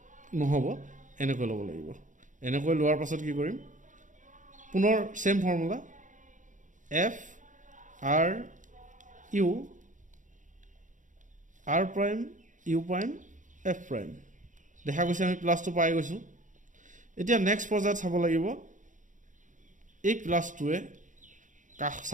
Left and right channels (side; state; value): left; late; 0.37 ms